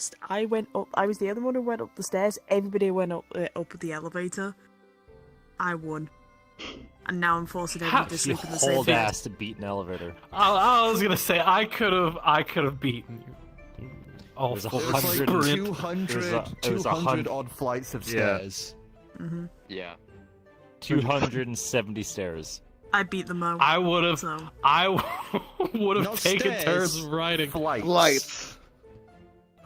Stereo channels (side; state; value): both; identical; correlation 1.00